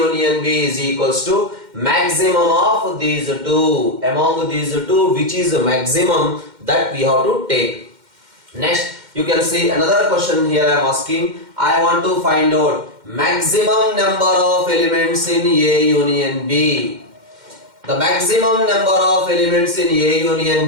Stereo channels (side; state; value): left; late; 2.1 ms